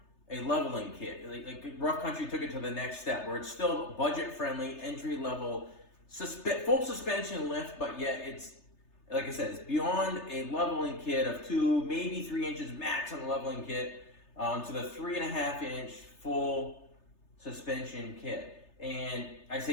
a leveling kit. Like Rough Country took it to the next step where it's still budget friendly, entry level, full suspension lift, but yet it's, like I said, it's beyond a leveling kit of 2, maybe 3 inches max on the leveling kit, to the 3.5-inch full suspension kit. And I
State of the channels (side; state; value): right; late; 3.3 ms